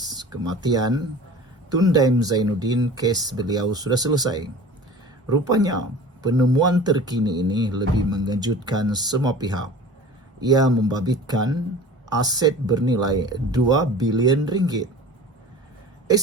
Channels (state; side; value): normal; both; correlation 0.40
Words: kematian Tun Daim Zainuddin, kes beliau sudah selesai. Rupanya penemuan terkini ini lebih mengejutkan semua pihak. Ia membabitkan aset bernilai 2 bilion ringgit.